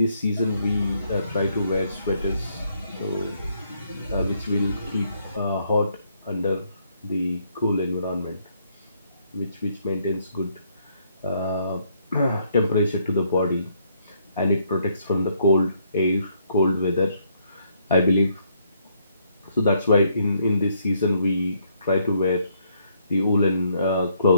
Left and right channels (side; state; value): both; inverted; correlation -0.71